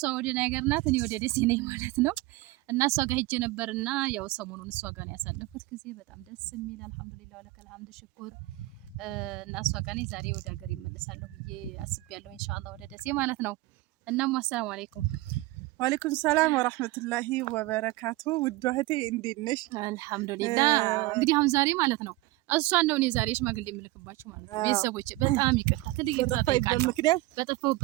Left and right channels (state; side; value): quieter; left; 20.1 dB